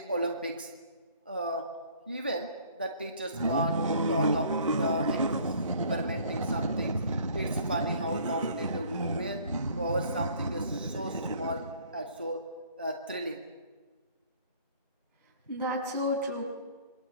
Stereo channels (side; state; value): both; inverted; correlation -0.55